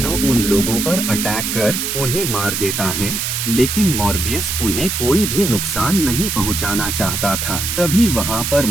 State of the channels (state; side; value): noise; right; hiss, 2 dB below the sound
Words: उन लोगों पर अटैक कर उन्हें मार देता है, लेकिन मॉर्बियस उन्हें कोई भी नुकसान नहीं पहुंचाना चाहता था। तभी वहाँ पर